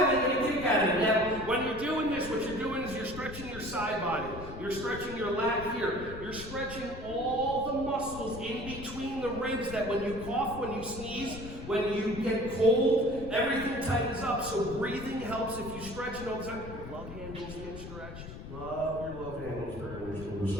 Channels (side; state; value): left; noise; rumble, 11 dB below the sound